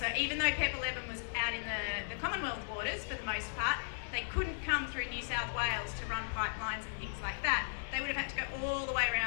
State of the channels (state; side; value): silent; right; digital silence